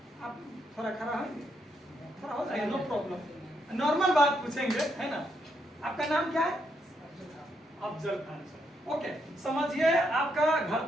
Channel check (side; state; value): both; normal; correlation 0.78